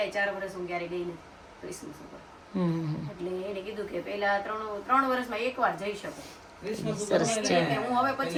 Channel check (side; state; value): both; identical; correlation 1.00